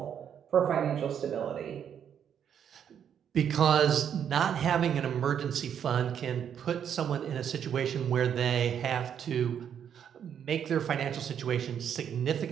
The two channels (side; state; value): left; quieter; 8.6 dB